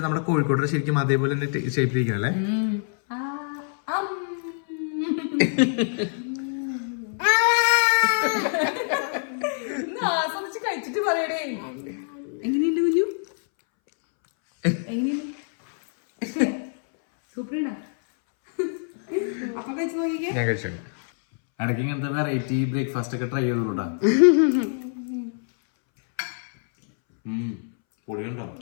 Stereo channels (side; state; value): right; silent; 62 dB below the other